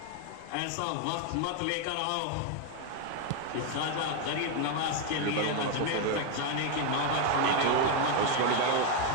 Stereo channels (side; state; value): both; different; correlation 0.01